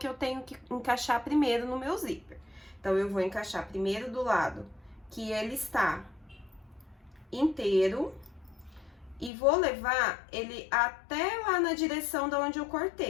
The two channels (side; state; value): right; drops out; at 9.3 s